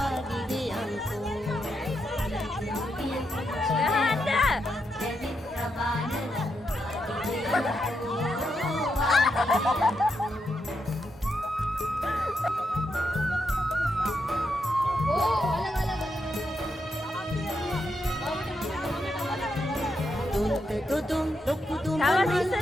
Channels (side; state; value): both; normal; correlation 0.82